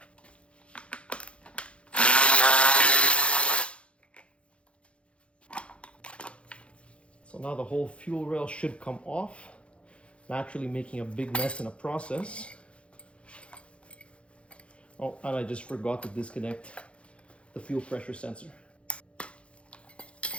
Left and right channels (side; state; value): right; late; 0.060 ms